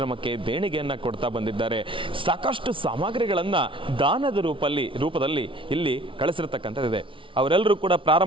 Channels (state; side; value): late; left; 0.25 ms